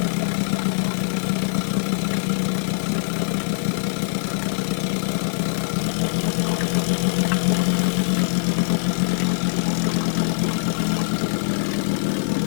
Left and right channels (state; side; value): silent; right; 64 dB below the other